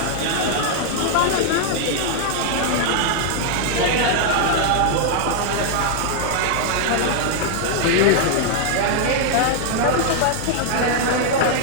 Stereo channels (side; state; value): both; different; correlation 0.00